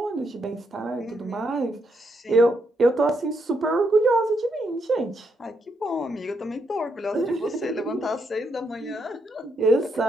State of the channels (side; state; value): both; normal; correlation 0.78